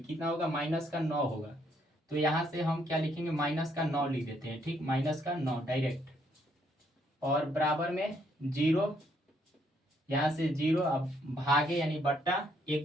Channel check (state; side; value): normal; both; correlation 0.71